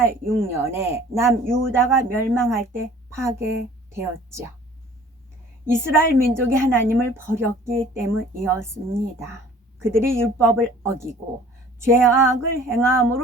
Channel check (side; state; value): both; normal; correlation 0.50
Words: 남유다가 멸망할 때 파괴되었죠. 이스라엘 민족이 하나님을 버렸기 때문이었습니다. 그들이 율법을 어기고 죄악을